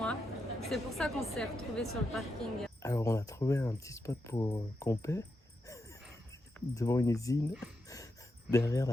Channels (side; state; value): both; normal; correlation 0.85